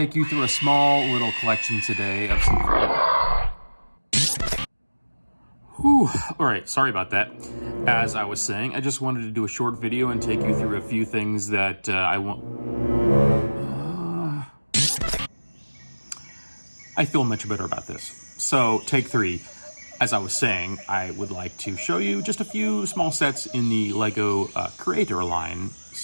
you through a small little collection today of some... Alright, sorry about that. As I was saying, I just wanted to do a short video and take you through a few things that I feel much better about this. So, take 3. As I was saying, I would like to show you just a few small sets in the LEGO Creator line,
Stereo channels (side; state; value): both; inverted; correlation -1.00